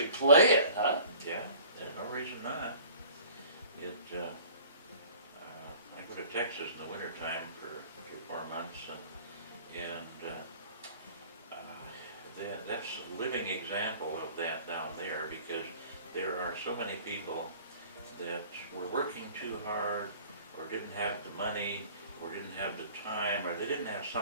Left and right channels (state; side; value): inverted; both; correlation -0.47